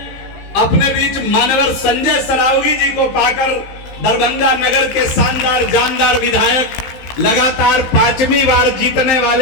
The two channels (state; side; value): late; right; 15 ms